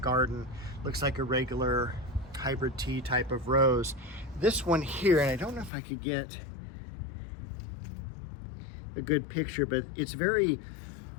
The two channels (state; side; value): drops out; right; at 5.7 s